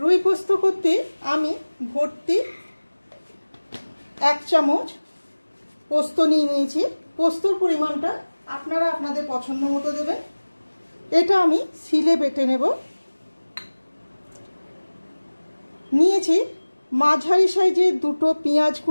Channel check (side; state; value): both; inverted; correlation -1.00